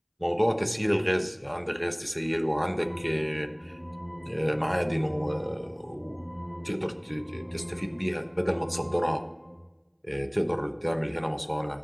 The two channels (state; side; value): identical; both; correlation 1.00